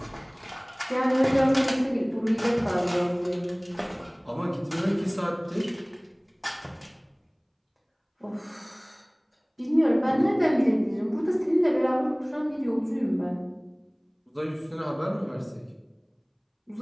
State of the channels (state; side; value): identical; both; correlation 1.00